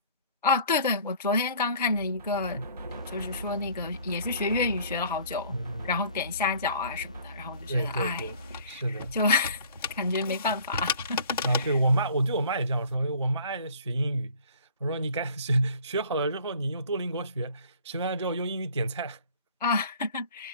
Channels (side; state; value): both; inverted; correlation -0.51